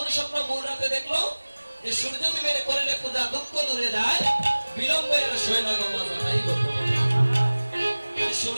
স্বপ্ন ভোর রাতে দেখলো? যে সূর্য বিবের করলে পূজা দুঃখ দূরে যায়, বিলম্বে আর শোয় না গো মাজা। এই গল্প,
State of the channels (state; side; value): inverted; both; correlation -1.00